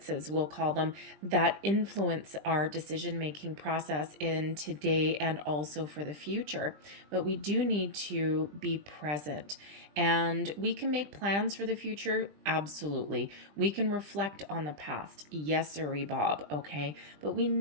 we'll call them, that influence our decision-making process in today and also for the future. But we do need to be present, and we can make plans for the future. Absolutely. We can reflect on the past. Yes, sirree, Bob. Okay. But we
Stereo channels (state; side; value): late; left; 20 ms